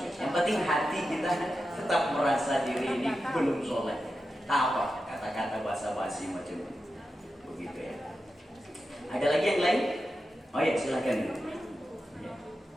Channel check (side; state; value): both; normal; correlation 0.90